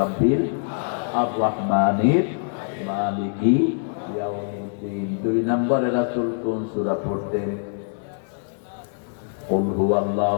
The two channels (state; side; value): silent; right; 61 dB below the other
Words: আর-রহমানির মালিকি ইয়াউমিদ্দিন। 2 নম্বরে রাসূল কোন সূরা পড়তেন? কুল